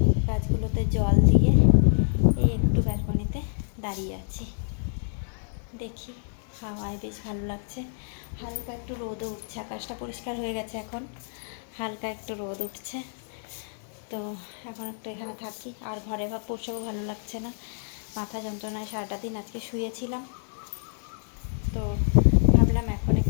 গাছগুলোতে জল দিয়ে এই একটু ব্যালকনিতে দাঁড়িয়ে আছি। দেখি, হাওয়ায় বেশ ভালো লাগছে। হালকা একটু রোদও উঠছে, আকাশটা পরিষ্কার হয়ে গেছে, এখন হালকা একটু রোদ উঠছে। তো এখন একটু এখানে থাকি। আর ঘরে বসেও ভালো লাগছে না, মাথা যন্ত্রণায় সারাটা দিন আজকে শুয়েছিলাম। তো ভাবলাম এখন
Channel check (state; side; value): silent; right; digital silence